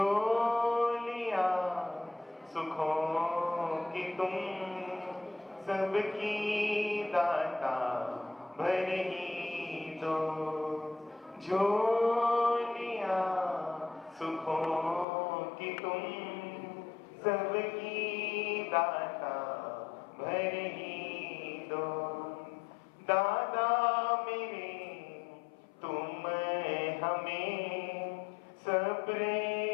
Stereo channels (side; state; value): right; drops out; at 15.1 s